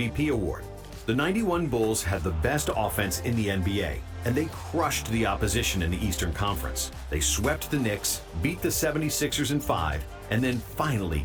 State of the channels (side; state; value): both; identical; correlation 1.00